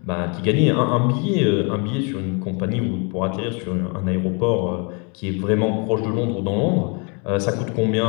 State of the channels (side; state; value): right; quieter; 34.8 dB